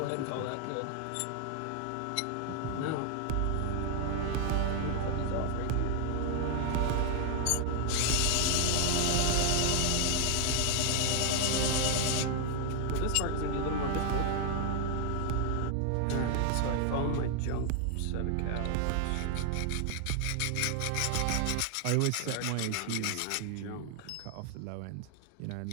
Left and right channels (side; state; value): both; different; correlation 0.00